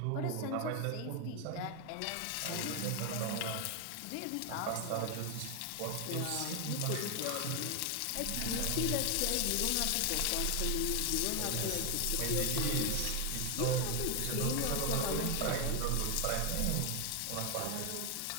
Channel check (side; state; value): both; different; correlation 0.01